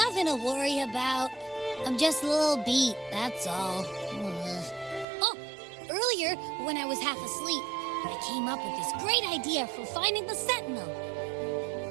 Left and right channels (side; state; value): left; drops out; at 5.1 s